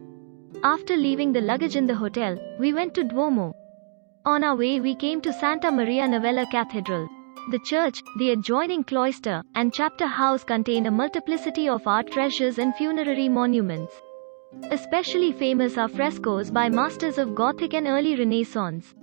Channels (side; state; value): left; silent; digital silence